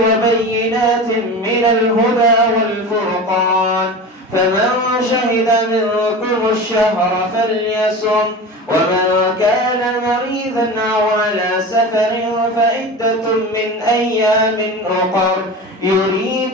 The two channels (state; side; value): normal; both; correlation 0.31